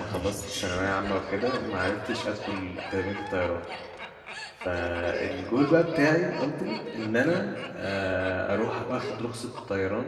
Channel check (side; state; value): both; identical; correlation 1.00